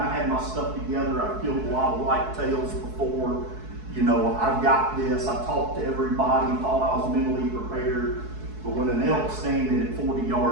had my stuff together. I've killed a lot of whitetails before. I've got this. I talked to everybody, thought I was mentally prepared. But when an elk's standing at 40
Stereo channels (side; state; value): left; late; 4.7 ms